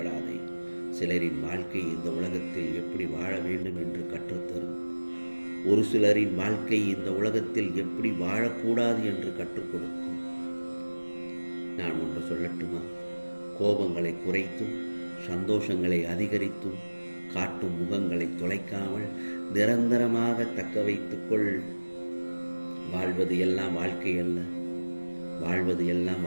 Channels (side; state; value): both; inverted; correlation -1.00